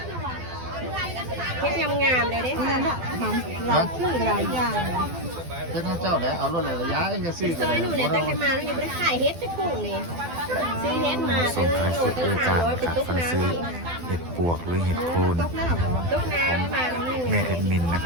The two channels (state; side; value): late; left; 12 ms